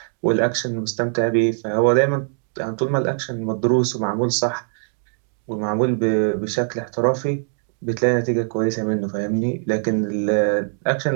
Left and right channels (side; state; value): left; silent; digital silence